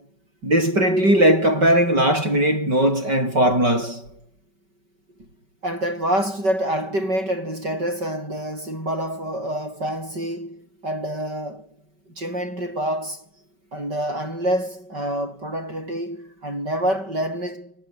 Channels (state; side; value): late; left; 5.2 ms